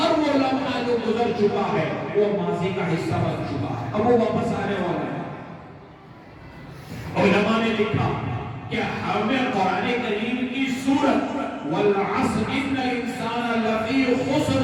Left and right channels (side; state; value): both; identical; correlation 1.00